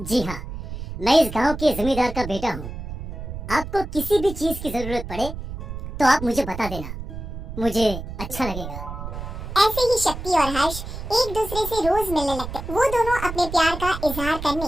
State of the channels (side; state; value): right; noise; rumble, 8 dB below the sound